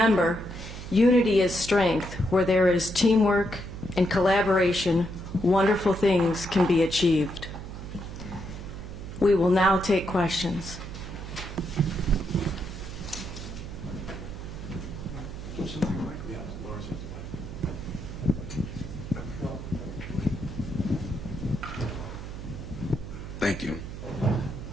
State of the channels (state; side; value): noise; right; hum, 10 dB below the sound